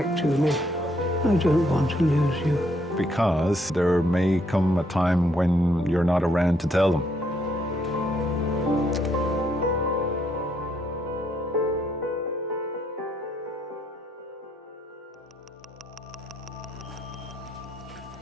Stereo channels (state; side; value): normal; both; correlation 0.72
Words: to me. I don't want to lose you. Because there may come a time when you're not around to tell them.